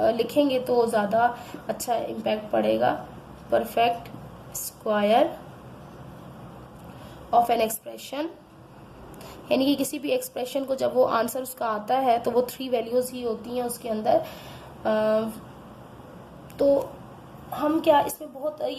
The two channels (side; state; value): both; identical; correlation 1.00